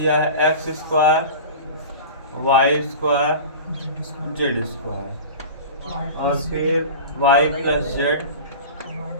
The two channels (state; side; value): inverted; both; correlation -0.34